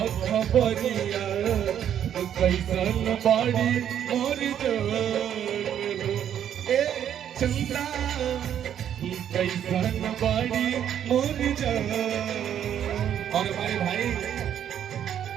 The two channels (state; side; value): quieter; left; 9.7 dB